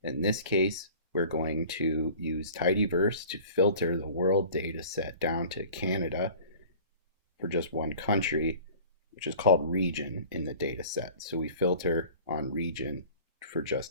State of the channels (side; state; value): both; inverted; correlation -0.44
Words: In this case, we're going to use tidyverse to filter the world data set down to Canada for just one country, which is called region in the data set. So we filter on region for